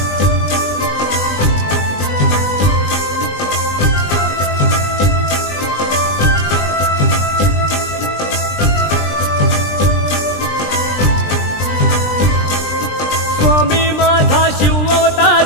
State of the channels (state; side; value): late; right; 20 ms